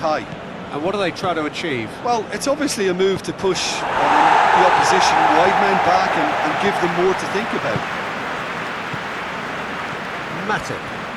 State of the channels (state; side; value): identical; both; correlation 1.00